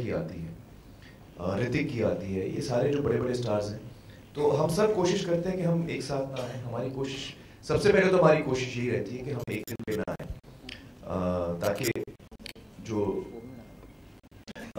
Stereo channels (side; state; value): both; identical; correlation 1.00